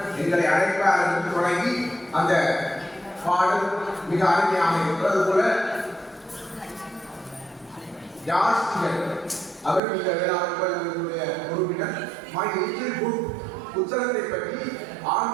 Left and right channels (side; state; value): left; drops out; at 9.8 s